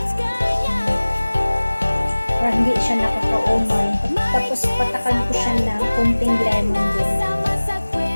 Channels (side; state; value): both; inverted; correlation -1.00